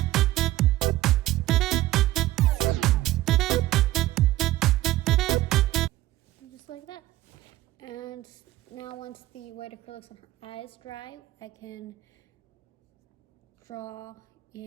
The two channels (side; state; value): left; quieter; 15.7 dB